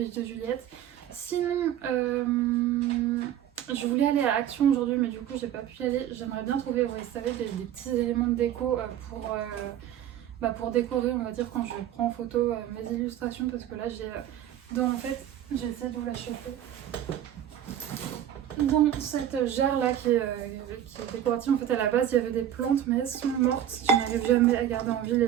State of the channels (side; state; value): left; quieter; 10.9 dB